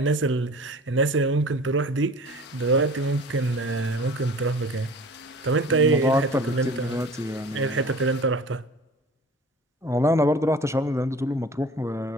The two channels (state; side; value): normal; both; correlation 0.42